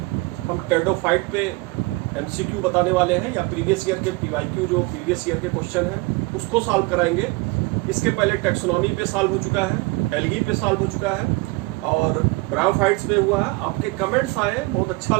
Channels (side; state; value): left; quieter; 24.4 dB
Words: हम pteridophyte पे एमसीक्यू बताने वाले हैं या प्रीवियस ईयर के पीवाईक्यू जो प्रीवियस ईयर के क्वेश्चन हैं उसको सॉल्व कराएंगे। इसके पहले टेक्सोनॉमी पे सॉल्व हो चुका है, एल्गी पे सॉल्व हो चुका है और ब्रायोफाइट्स में हुआ है। आपके कमेंट्स आए, बहुत अच्छा